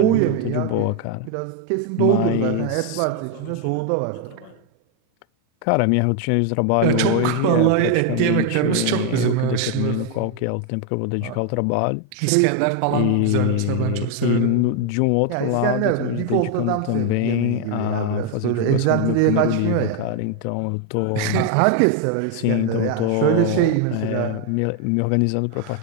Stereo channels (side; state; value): both; different; correlation 0.01